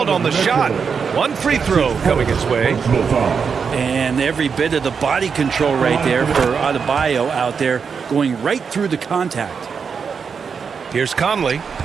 on the shot. One free throw coming his way. And every bit of the body control right there for Adebayo out there, going right through the contact. Here's Conley.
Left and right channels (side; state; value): left; quieter; 6.0 dB